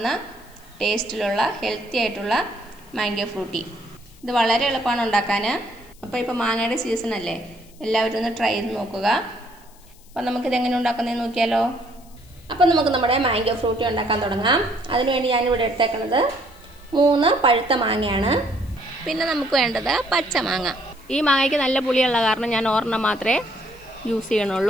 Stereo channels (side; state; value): left; noise; hiss, 27 dB below the sound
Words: ടേസ്റ്റിലുള്ള ഹെൽത്തി ആയിട്ടുള്ള മാംഗോ ഫ്രൂട്ടി. ഇത് വളരെ എളുപ്പമാണ് ഉണ്ടാക്കാൻ. അപ്പോൾ മാങ്ങയുടെ സീസൺ അല്ലേ, എല്ലാവരും ഒന്ന് ട്രൈ ചെയ്ത് നോക്കുക. അപ്പോൾ നമുക്കിത് എങ്ങനെ ഉണ്ടാക്കുന്നതെന്ന് നോക്കിയാലോ. അപ്പോൾ നമുക്ക് നമ്മുടെ മാംഗോ ഫ്രൂട്ടി ഉണ്ടാക്കാൻ തുടങ്ങാം. അതിനുവേണ്ടി ഞാനിവിടെ എടുത്തേക്കുന്നത് 3 പഴുത്ത മാങ്ങയാണ്. പിന്നെ നമുക്ക് വേണ്ടത് പച്ചമാങ്ങ. ഈ മാങ്ങയ്ക്ക് നല്ല പുളിയുള്ള കാരണം ഞാൻ ഒരെണ്ണം മാത്രമേ യൂസ്